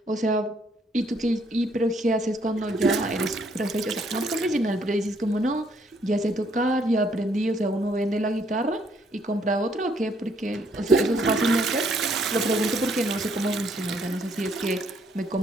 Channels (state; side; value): normal; both; correlation 0.68